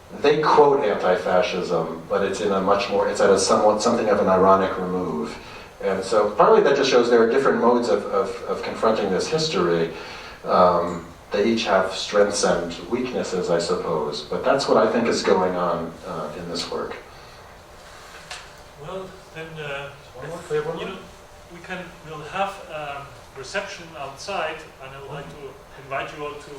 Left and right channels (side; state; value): both; identical; correlation 1.00